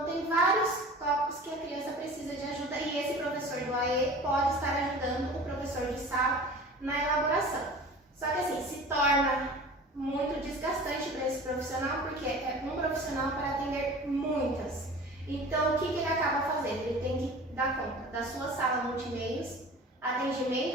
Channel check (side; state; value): both; normal; correlation 0.40